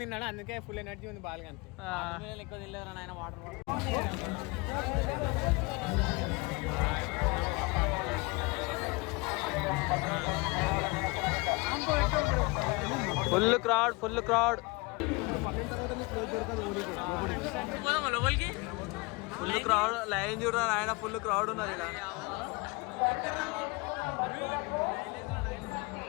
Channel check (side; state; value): right; quieter; 26.5 dB